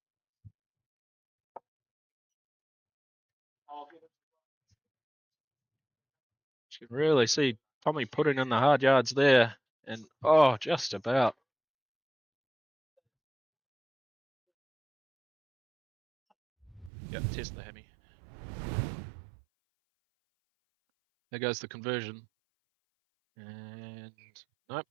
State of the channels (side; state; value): left; drops out; at 16.9 s